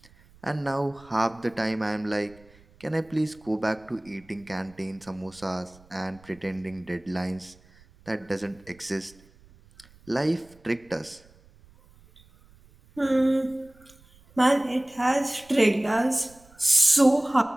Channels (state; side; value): noise; right; rumble, 27 dB below the sound